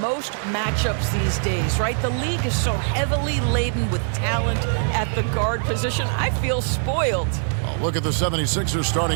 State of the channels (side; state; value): left; silent; digital silence